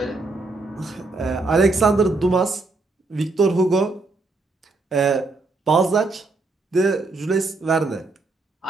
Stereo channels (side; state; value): left; quieter; 3.4 dB